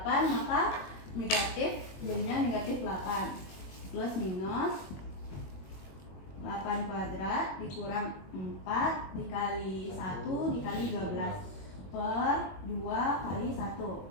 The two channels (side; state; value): right; late; 21 ms